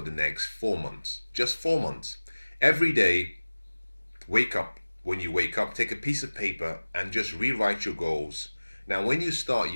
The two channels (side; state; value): both; inverted; correlation -1.00